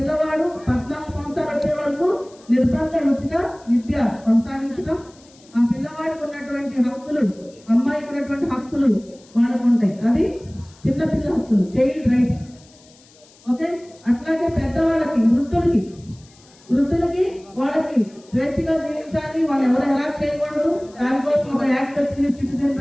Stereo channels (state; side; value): noise; left; hiss, 27 dB below the sound